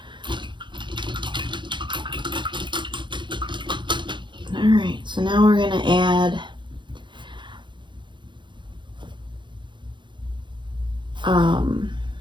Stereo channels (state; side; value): late; left; 0.23 ms